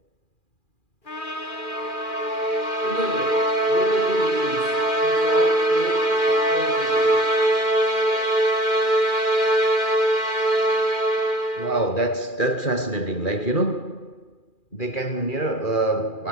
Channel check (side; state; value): right; late; 2.4 ms